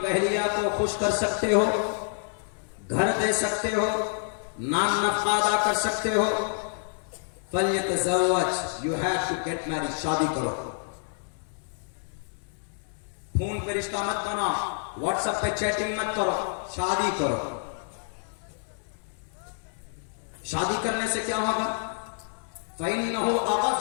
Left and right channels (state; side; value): silent; right; 59 dB below the other